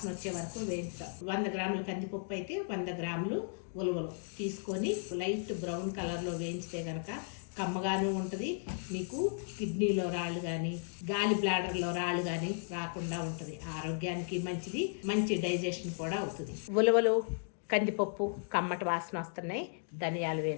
వచ్చే వరకు వేయించుతాం. 100 గ్రాముల కందిపప్పు అయితే 100 గ్రాములు ఉలవలు తీసుకొని లైట్ బ్రౌన్ కలర్లో వేయించితే కనుక కమ్మగానే ఉంటుంది. మీకు కిడ్నీలో రాళ్ళు కానీ గాలి బ్లాడర్లో రాళ్ళు కానీ రాకుండా ఉంటుంది. ఆరోగ్యానికి మంచిది, మంచి డైజెషన్ కూడా అవుతుంది. ఉలవలు కందిపప్పు కమ్మటి వాసన వస్తున్నాయి. ధనియాలు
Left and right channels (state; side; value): silent; right; digital silence